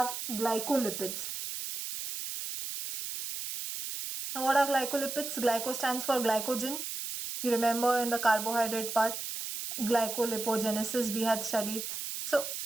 glycolipids. Now what are glycolipids? Glyco stands for glycogen. You remember in the carbohydrate part, glycolipogenesis we had studied. So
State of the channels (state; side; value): noise; right; hiss, 5 dB below the sound